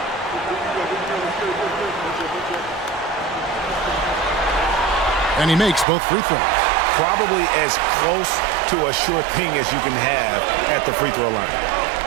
And he makes both free throws. Probably as close to a sure thing as you can have at the free throw line.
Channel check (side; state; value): left; drops out; at 5.9 s